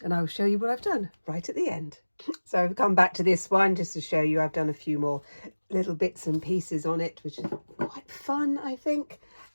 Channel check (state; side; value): inverted; both; correlation -1.00